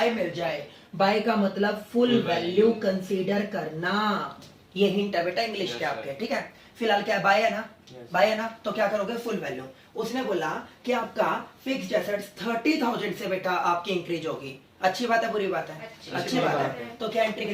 मिल जाए, बाय का मतलब full Full value value। Consider करना, ये हिंट है बेटा इंग्लिश Yes, के आपके, sir। ठीक है। फिलहाल क्या बाय है ना, Yes। बाय है ना, तो क्या करोगे, फुल वैल्यू। उसने बोला कि आपका फिक्स्ड एसेट्स 30,000 से बेटा आपकी इंक्रीज होगी। अच्छी बात है, बुरी बात है, अच्छी बात है। तो क्या एंट्री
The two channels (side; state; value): both; identical; correlation 1.00